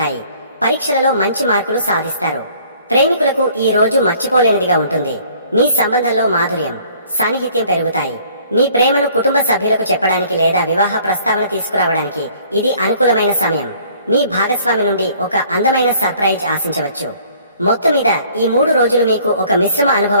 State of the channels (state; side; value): inverted; both; correlation -0.57